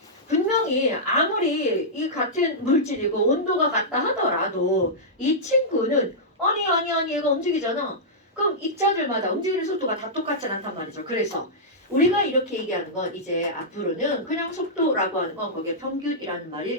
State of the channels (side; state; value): both; normal; correlation -0.11